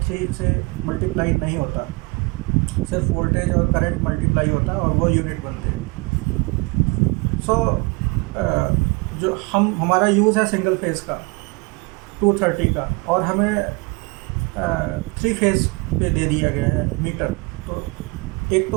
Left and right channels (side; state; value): left; quieter; 27.9 dB